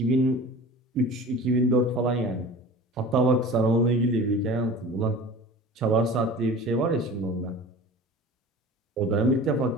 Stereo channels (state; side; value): normal; both; correlation 0.38